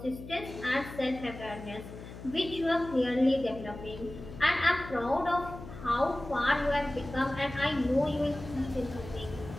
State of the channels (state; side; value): noise; left; hum, 13 dB below the sound